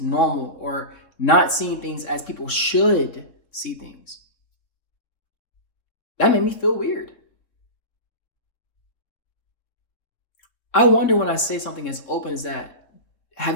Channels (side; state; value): right; late; 3.7 ms